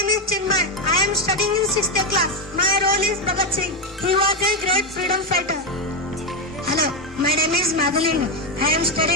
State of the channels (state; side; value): normal; both; correlation 0.07